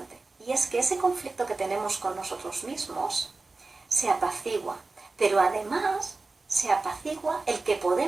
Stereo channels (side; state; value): left; quieter; 3.6 dB